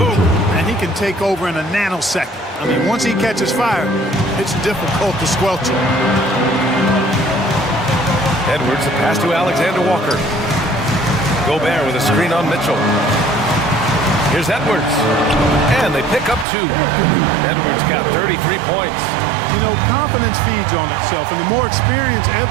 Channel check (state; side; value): drops out; left; at 16.4 s